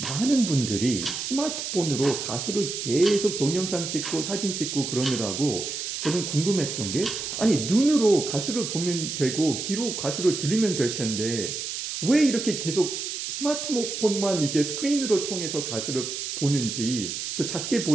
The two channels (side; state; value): right; noise; hiss, 5 dB below the sound